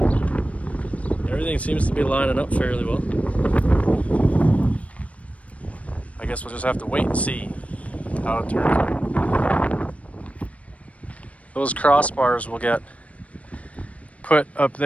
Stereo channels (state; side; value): late; right; 0.066 ms